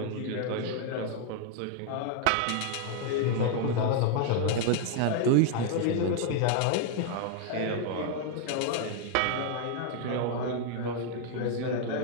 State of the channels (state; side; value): different; both; correlation 0.00